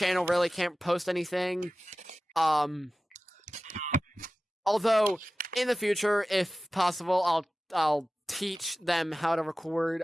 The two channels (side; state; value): both; normal; correlation 0.96